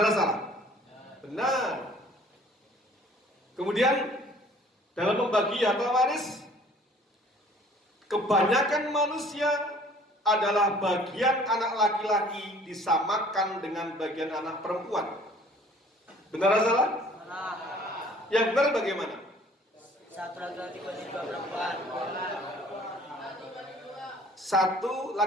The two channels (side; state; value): both; normal; correlation 0.53